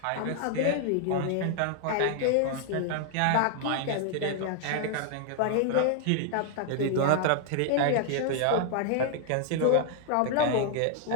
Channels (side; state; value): both; different; correlation 0.00